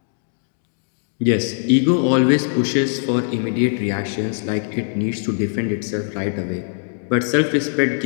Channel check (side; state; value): right; silent; digital silence